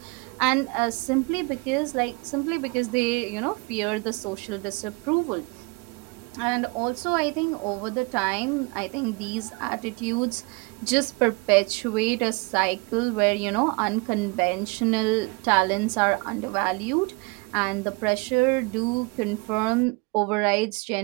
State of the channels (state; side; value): quieter; left; 28.6 dB